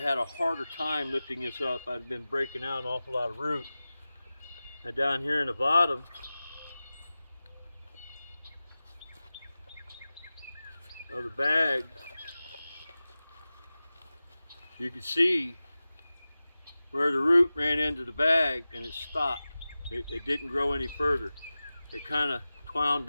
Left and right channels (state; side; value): inverted; both; correlation -0.96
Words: had a harder time lifting this up. I'd been breaking out an awful lot of root. And down here in the bottom, of the bag, you can see where the root ran into the bag and it stopped. It didn't grow any further. It kind of twound